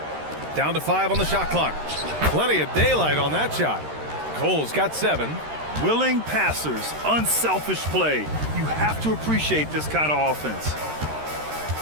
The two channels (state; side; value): late; left; 13 ms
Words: Down to 5 on the shot clock. Plenty of daylight on that shot. Cole's got 7. Willing passers, unselfish play. You have to appreciate this kind of offense.